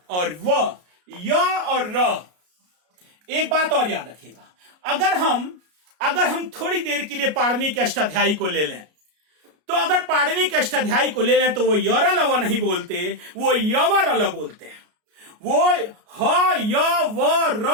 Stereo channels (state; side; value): late; left; 33 ms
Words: और व। य और र। एक बात और याद रखिएगा, अगर हम थोड़ी देर के लिए पाणिनि के अष्टाध्यायी को ले लें, तो अगर पाणिनि के अष्टाध्यायी को ले लें तो वो यर लव नहीं बोलते, वो यवर ल बोलते हैं। वो ह य व